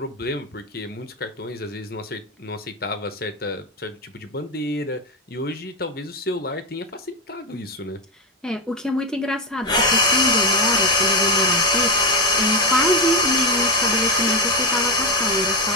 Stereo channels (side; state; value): both; normal; correlation 0.11